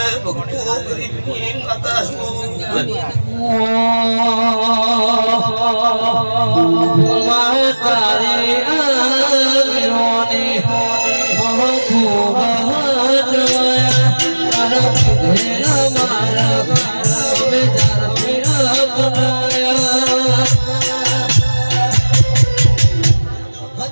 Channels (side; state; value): both; inverted; correlation -1.00